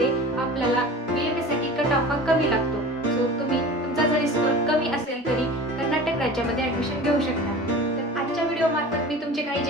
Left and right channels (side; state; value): both; normal; correlation 0.37